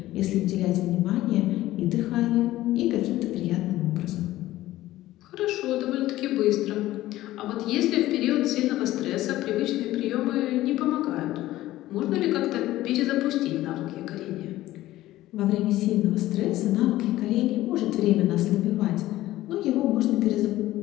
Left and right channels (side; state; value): right; quieter; 15.7 dB